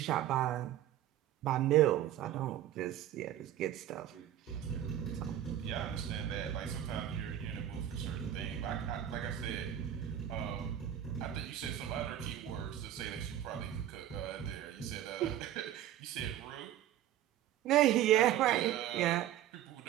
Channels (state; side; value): quieter; left; 11.8 dB